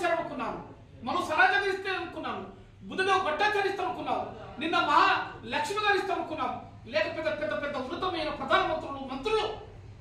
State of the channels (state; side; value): identical; both; correlation 1.00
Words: మనం సరాజం ఇస్తే అనుకున్నాను, బుద్ధదేవ్ భట్టాచార్య ఇస్తాం అనుకున్నాం, నిన్న మహాలక్ష్మి గారు ఇస్తాం అనుకున్నాం. లేకపోతే పెద్ద పెద్ద ఉన్నతమైన ప్రధానమంత్రులు, మంత్రులు